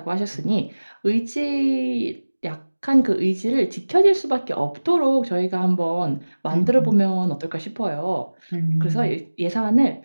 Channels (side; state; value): both; inverted; correlation -1.00